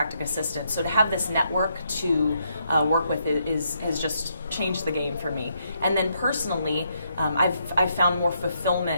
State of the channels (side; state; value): both; inverted; correlation -0.76